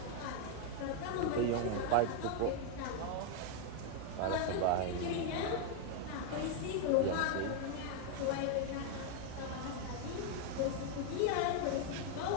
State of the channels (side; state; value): both; different; correlation 0.01